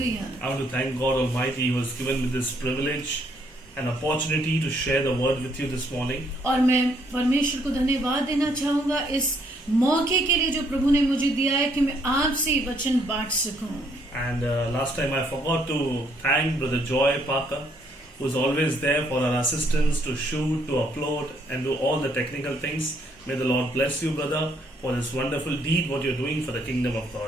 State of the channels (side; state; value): both; normal; correlation 0.69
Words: I want to thank God Almighty who has given me this privilege and opportunity to share the word with you this morning. और मैं परमेश्वर को धन्यवाद देना चाहूँगा इस मौके के लिए जो प्रभु ने मुझे दिया है कि मैं आपसे ये वचन बांट सकूं। And last time I forgot to thank Brother Joy Parker, who is always there for our assistance to shoot, to upload, and do all the technical things. May the Lord bless you, brother, for this wonderful deed what you're doing for the kingdom of